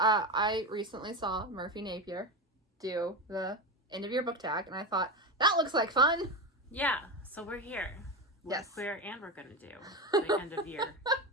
recently saw Murphy Napier do the end of year book tag, and I thought, that looks like fun. Yeah, so we're here. We're Yes. queer, and we're going to do the end of year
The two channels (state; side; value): normal; both; correlation 0.18